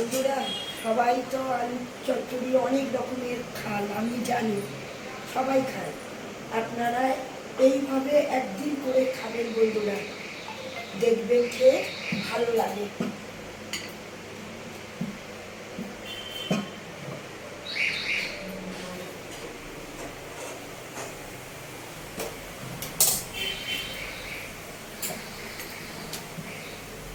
সবাই তো আলু চচ্চড়ি অনেক রকমের খান, আমি জানি সবাই খায়। আপনারা এইভাবে একদিন করে খাবেন বন্ধুরা, দেখবেন খেয়ে ভালো লাগে।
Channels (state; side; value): identical; both; correlation 1.00